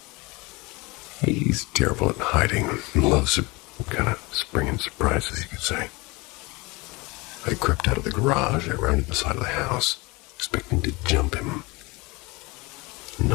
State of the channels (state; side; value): quieter; right; 24.7 dB